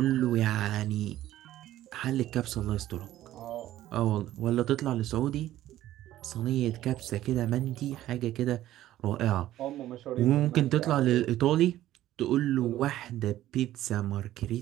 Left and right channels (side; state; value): left; quieter; 13.9 dB